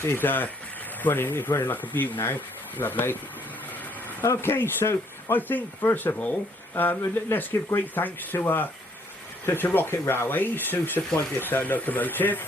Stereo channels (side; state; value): both; normal; correlation 0.66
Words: running like a beaut now. Lovely. Okay, so I think first of all, let's give great thanks to Rocket Railways who supplied this locomotive.